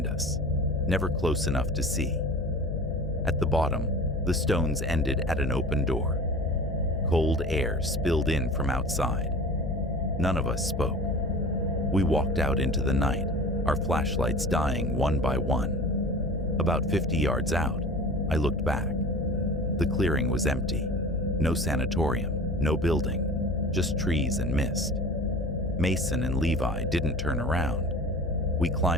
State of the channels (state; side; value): noise; left; hum, 5 dB below the sound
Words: us, never close enough to see. At the bottom, the stones ended at an open door. Cold air spilled in from outside. None of us spoke. We walked out into the night, our flashlights dying one by one. About 50 yards out, I looked back. The clearing was empty. No sanatorium, no building, just trees and mist. Mason and Levi didn't turn around. We